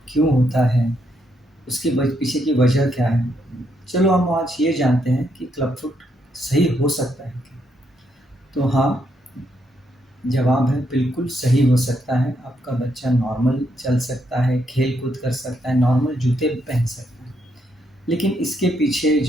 क्यों होता है, उसके पीछे की वजह क्या है, चलो हम आज ये जानते हैं कि क्लब फुट सही हो सकता है क्या? तो हाँ, जवाब है बिल्कुल सही हो सकता है। आपका बच्चा नॉर्मल चल सकता है, खेल-कूद कर सकता है, नॉर्मल जूते भी पहन सकता है। लेकिन इसके पीछे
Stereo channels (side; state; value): both; normal; correlation 0.77